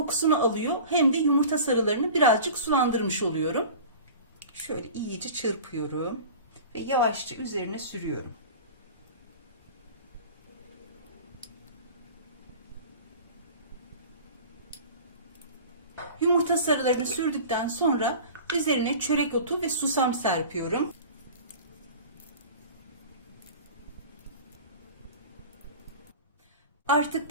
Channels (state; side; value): inverted; both; correlation -0.38